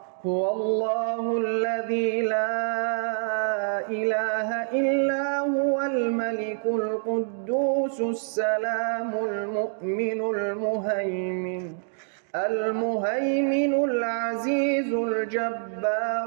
الله الذي لا إله إلا هو الملك القدوس السلام المؤمن المهيمن العزيز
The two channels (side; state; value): left; silent; digital silence